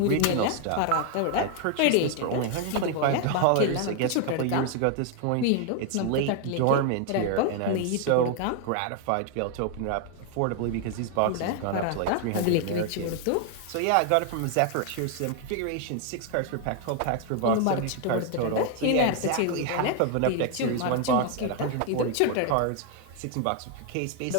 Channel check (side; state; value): both; different; correlation 0.00